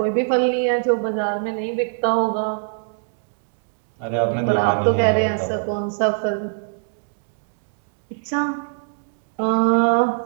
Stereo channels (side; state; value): left; silent; digital silence